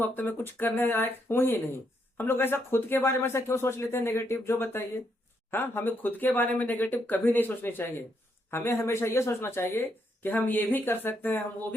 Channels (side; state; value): both; normal; correlation 0.77